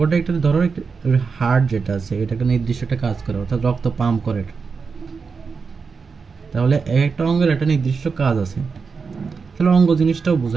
একটা, ধরো হার্ট যেটা আছে এটাকে নির্দিষ্ট একটা কাজ করে, অর্থাৎ রক্ত পাম্প করে। তাহলে একটা অঙ্গের একটা নির্দিষ্ট কাজ আছে, তাহলে অঙ্গ জিনিসটাও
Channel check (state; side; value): quieter; left; 5.2 dB